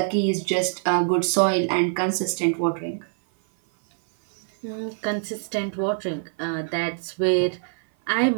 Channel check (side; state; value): left; silent; 56 dB below the other